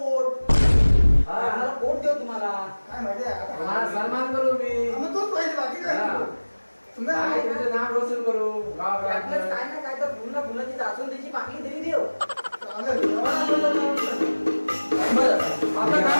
आम्हाला पोट देऊ तुम्हाला काय माहिती आहे आता तुम्हाला सन्मान करू मी मग तोच पाहिजे बाकी काय हा. तुम्ही काय तुमचं नाव रोशन करू आपल्याच गावात काय ना काय तर पुन्हा पुन्हा ती दासून त्याची बाकी तरी देव बरं आपलं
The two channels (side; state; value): both; inverted; correlation -1.00